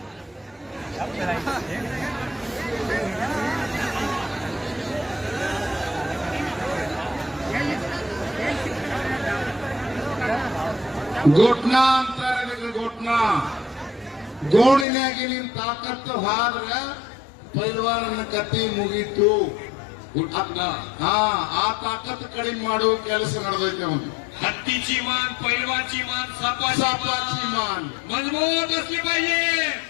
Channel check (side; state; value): right; drops out; at 14.9 s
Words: घोटना ಅಂತಾರೆ घोटना ಗೋಣಿನಾಗಿ ನಿನ್ ತಾಕತ್ತು ಹಾದ್ರ ಪೈಲ್ವಾನನ ಕತ್ತಿ ಮುಗೀತು. गुटना ಆ ತಾಕತ್ತು ಕಡಿಮೆ ಮಾಡೋ ಕೆಲಸ ನಡೆದೈತೆ ಅವನು. हत्तीची मान, पैलवानची मान, सापाची मान. मजबूत असली पाहिजे.